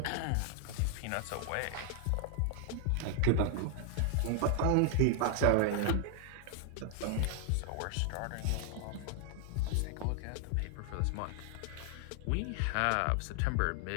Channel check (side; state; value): both; different; correlation 0.00